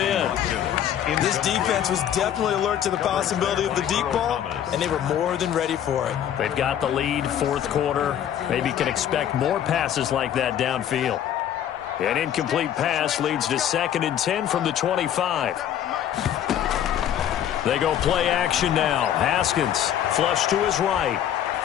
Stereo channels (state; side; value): quieter; right; 10.3 dB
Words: This defense was definitely alert to the possibility of the deep ball, and they were more than ready for it. They've got the lead, 4th quarter. Maybe can expect more passes like that downfield. An incomplete pass leads to 2nd and 10 from the 25. They go play action now. Haskins flush to his right.